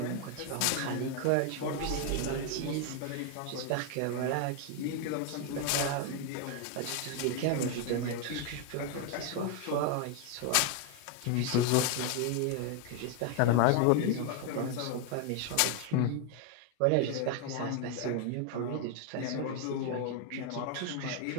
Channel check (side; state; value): both; different; correlation 0.00